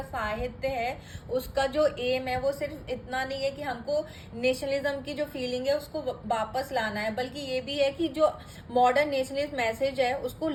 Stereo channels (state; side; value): identical; both; correlation 1.00